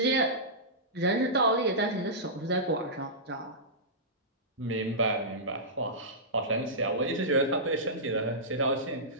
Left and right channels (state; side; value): normal; both; correlation -0.17